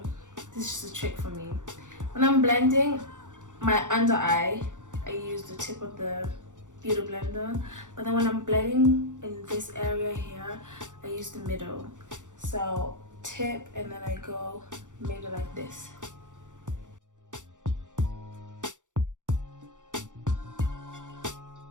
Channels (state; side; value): late; left; 0.86 ms